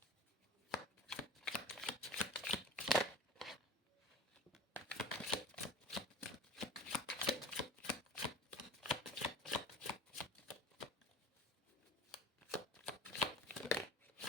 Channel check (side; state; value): both; normal; correlation 0.38